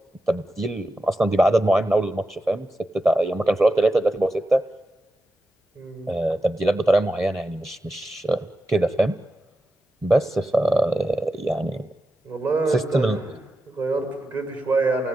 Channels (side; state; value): both; normal; correlation 0.90